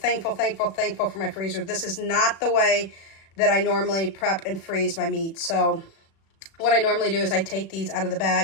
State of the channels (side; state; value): right; late; 36 ms